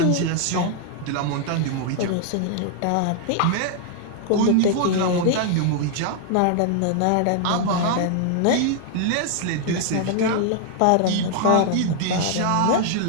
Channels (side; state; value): both; different; correlation 0.00